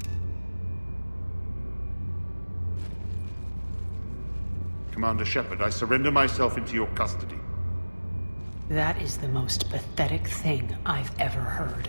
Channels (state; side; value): inverted; both; correlation -1.00